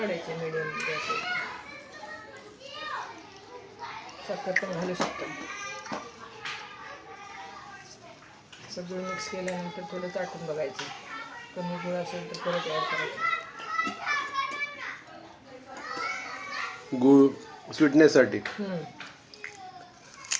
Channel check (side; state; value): both; identical; correlation 1.00